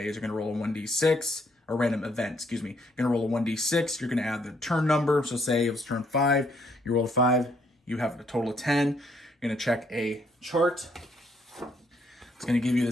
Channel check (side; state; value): both; normal; correlation 0.70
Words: You're going to roll a 1d6, or random event, excuse me. You're going to roll a 1d6. You're going to add the turn number. So say it was turn 5, you roll a 5, you have a total of 10. You're going to check a chart. It's going to give you